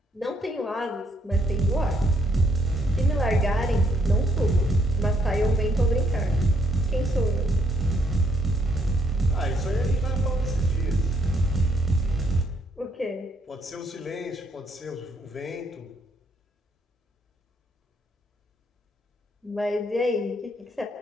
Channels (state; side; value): normal; both; correlation 0.72